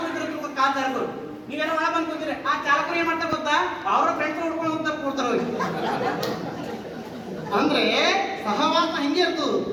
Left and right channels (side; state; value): both; identical; correlation 1.00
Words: ಇರ್ತಾರೆ, ಕಾರ್ ಚಾಲಕರು ನೀವೇನೋ ಒಳಗೆ ಬಂದು ಕೂತಿರಿ. ಆ ಚಾಲಕರು ಏನ್ ಮಾಡ್ತಾರೆ ಗೊತ್ತಾ, ಅವರ ಫ್ರೆಂಡ್ಸ್ ಹುಡ್ಕೊಂಡು ಹೋಗ್ತಾ ಕೊಡ್ತಾರ ಅವ್ರಿಗೆ. ಅಂದ್ರೆ ಸಹವಾಸ ಹಿಂಗೆ ಇರ್ತದ.